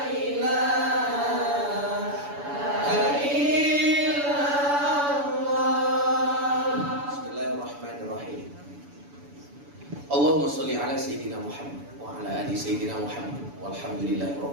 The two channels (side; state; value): left; late; 7.0 ms